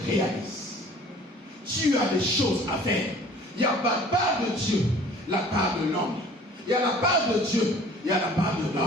réalise. Tu as des choses à faire. Il y a la part de Dieu, la part de l'homme. Il y a la part de Dieu, il y a la part de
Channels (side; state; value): both; normal; correlation 0.50